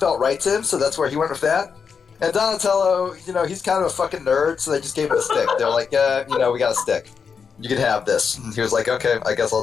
right to him, so that's where he went with that. And Donatello, he's kind of a fucking nerd, so they just gave him a stick. They're like, we got a stick. You can have this. And he was like, okay, I guess I'll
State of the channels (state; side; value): quieter; right; 6.1 dB